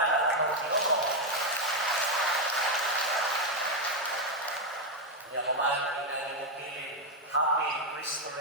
ang mga Ginoo. Niya kumain ang inang pilin, Happy Cristo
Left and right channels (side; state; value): both; normal; correlation 0.04